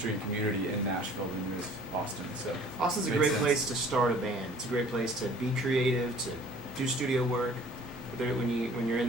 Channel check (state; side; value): normal; both; correlation 0.51